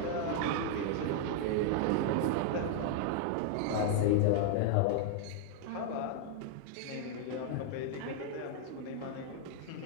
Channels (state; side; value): different; both; correlation 0.00